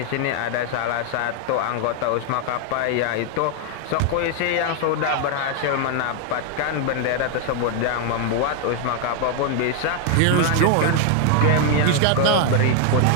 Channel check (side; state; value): both; different; correlation 0.00